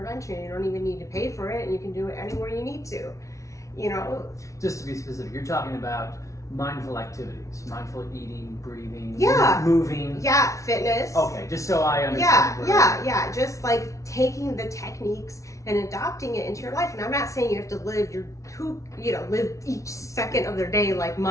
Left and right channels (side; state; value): right; late; 0.15 ms